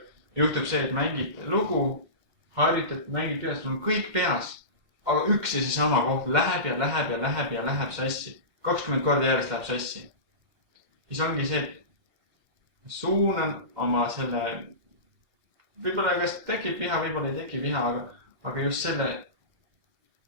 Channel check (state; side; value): late; left; 2.1 ms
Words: juhtub see, et mängid lugu, harjutad, mängid peas, sul on kõik peas, aga üks ja seesama koht läheb sassi. 20 korda järjest läheb sassi. Siis ongi see, et suunan oma selle, võib-olla kas tekib viha, võib-olla ei teki viha, aga just selle